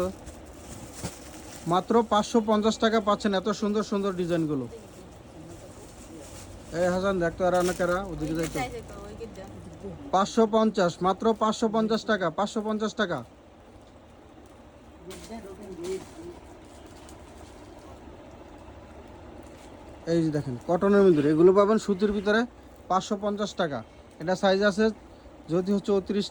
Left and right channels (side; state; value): both; identical; correlation 1.00